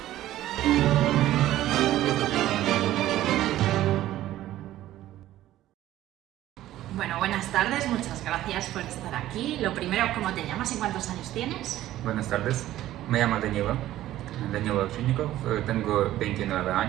Bueno, buenas tardes, muchas gracias por estar aquí. Lo primero, ¿cómo te llamas y cuántos años tienes? Buenas tardes, me llamo Danilo Ovchinnikov, tengo 29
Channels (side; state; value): left; quieter; 14.1 dB